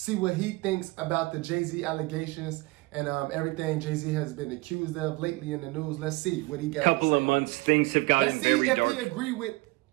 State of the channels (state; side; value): quieter; left; 23.0 dB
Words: what he thinks about the Jay-Z allegations and everything Jay-Z has been accused of lately in the news. Let's see what he got to say. Couple of months, things have gotten very dark. Let's see if he agree with